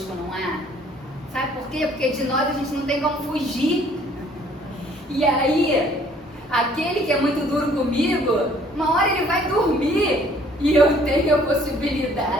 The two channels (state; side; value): normal; both; correlation 0.59